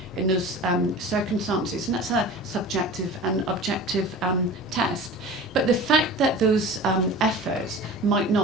in those circumstances, and that's a subjective and objective test. But the fact that those efforts might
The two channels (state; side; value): normal; both; correlation 0.37